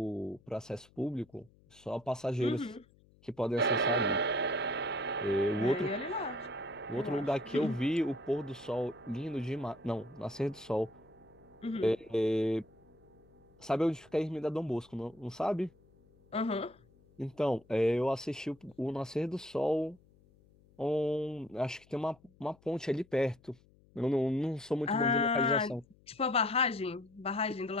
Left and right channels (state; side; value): noise; left; hum, 29 dB below the sound